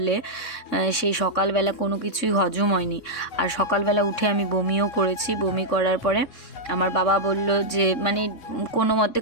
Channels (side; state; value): right; late; 3.6 ms